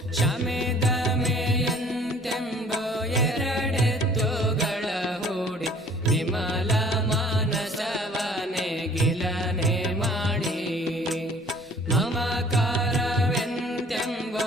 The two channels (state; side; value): normal; both; correlation 0.53